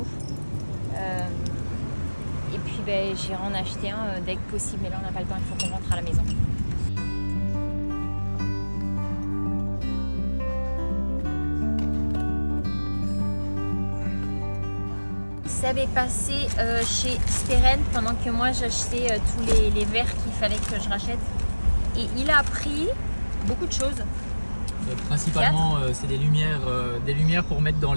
Et puis j'irai en acheter un dès que possible. Mais là, on n'a pas le temps, il faut qu'on rentre à la maison. Seb est passé chez Steren pendant que moi j'achetais tous les verres qu'il fallait que je rachète. Et il a pris beaucoup de choses. Principalement, c'est des lumières pour mettre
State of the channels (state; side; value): inverted; both; correlation -1.00